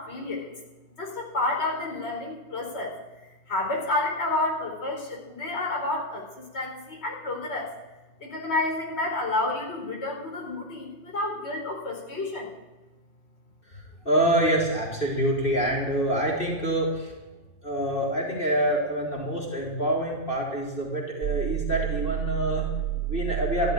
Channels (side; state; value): right; late; 3.1 ms